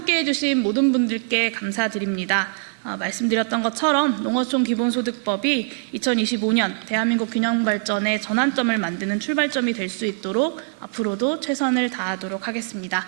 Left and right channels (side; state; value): left; silent; 64 dB below the other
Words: 주신 모든 분들께 감사드립니다. 말씀드렸던 것처럼 농어촌 기본소득법이 2025년 대한민국 균형발전의 전환점을 만드는 출발점이 될 수 있도록 앞으로도 최선을 다하도록 하겠습니다.